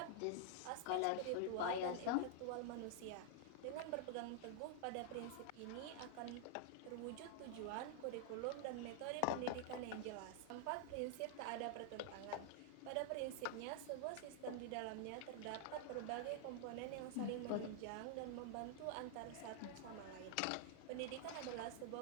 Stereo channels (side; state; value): both; different; correlation -0.01